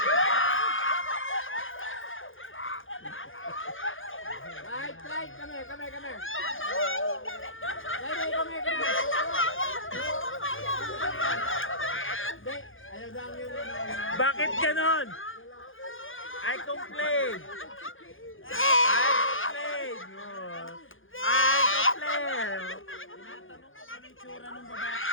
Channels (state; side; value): late; right; 0.58 ms